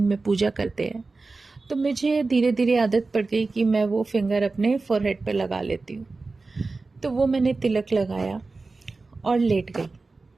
में पूजा करते हैं, तो मुझे धीरे धीरे आदत पड़ गई कि मैं वो फिंगर अपने फोरहेड पे लगा लेती हूँ। तो वो मैंने तिलक लगाया और लेट गई।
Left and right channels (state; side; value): quieter; left; 3.7 dB